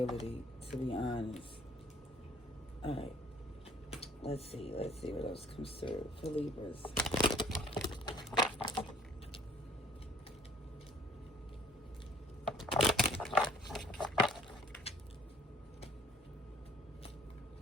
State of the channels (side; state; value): both; normal; correlation 0.56